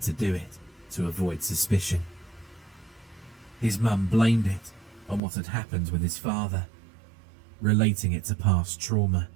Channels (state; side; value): drops out; left; at 5.2 s